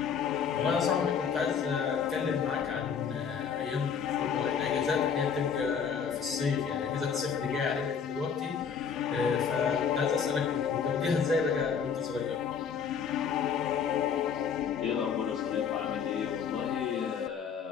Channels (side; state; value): right; quieter; 6.8 dB